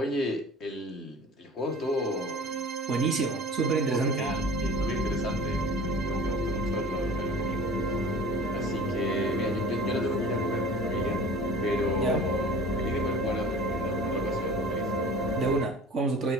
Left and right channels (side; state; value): both; normal; correlation 0.42